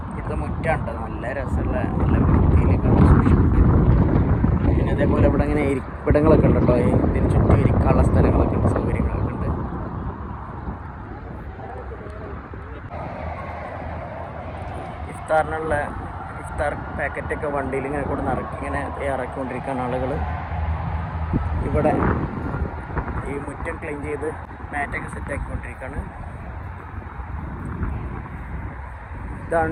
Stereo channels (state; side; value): identical; both; correlation 1.00